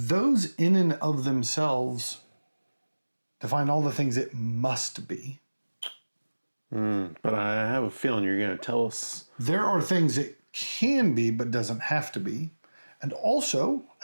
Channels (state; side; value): inverted; both; correlation -1.00